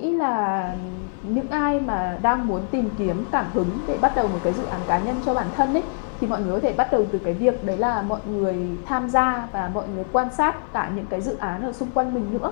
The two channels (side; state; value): right; silent; 63 dB below the other